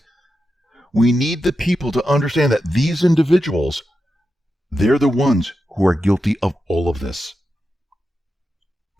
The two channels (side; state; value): both; normal; correlation 0.89